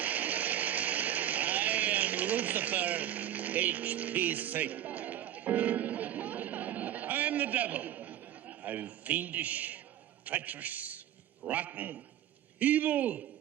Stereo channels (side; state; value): left; quieter; 11.6 dB